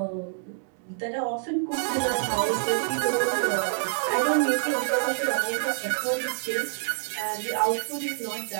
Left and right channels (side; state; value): left; silent; digital silence